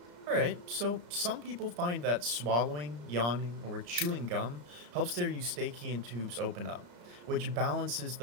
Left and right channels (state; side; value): late; left; 34 ms